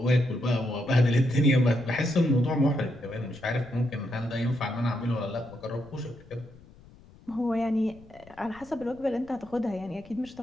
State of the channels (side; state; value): left; noise; rumble, 23 dB below the sound